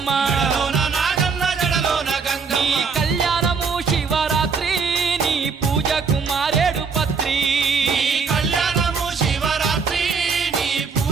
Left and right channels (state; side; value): quieter; left; 5.4 dB